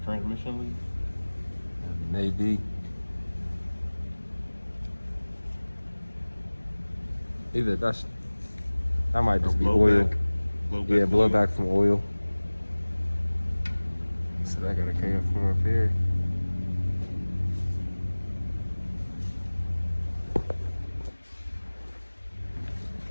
transmission leak? maybe. Either that might just be oil. Yeah, blowback from oil. So that gotta come from up here.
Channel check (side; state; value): both; inverted; correlation -1.00